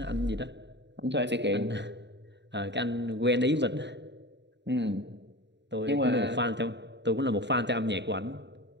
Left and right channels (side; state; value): left; late; 0.51 ms